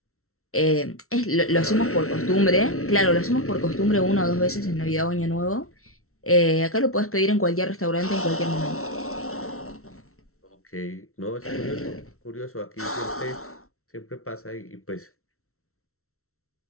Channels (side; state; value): right; late; 0.63 ms